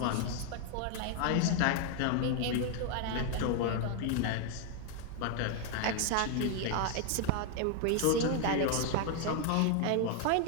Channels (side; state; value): both; different; correlation 0.00